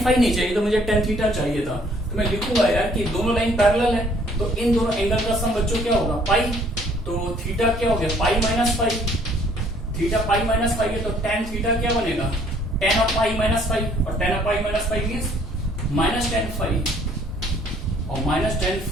फाई नहीं चाहिए, तो मुझे tan थीटा चाहिए था। तो मैं लिखूंगा यार कि दोनों लाइन पैरेलल है, तो इन दोनों एंगल का सम बच्चों क्या होगा पाई। तो थीटा क्या हो गया pi -phi, theta pi -phi है, तो tan थीटा क्या बनेगा tan ऑफ पाई -फाई, और tan of pi -phi means -tan phi, और -tan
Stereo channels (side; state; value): both; normal; correlation 0.61